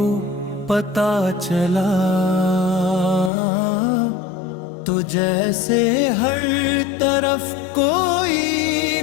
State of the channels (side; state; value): right; drops out; at 3.3 s